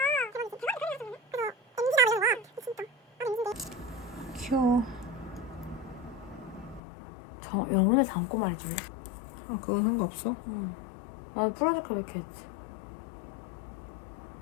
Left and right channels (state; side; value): drops out; right; at 6.8 s